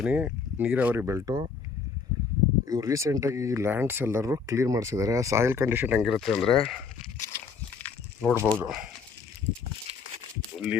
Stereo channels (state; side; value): quieter; right; 5.4 dB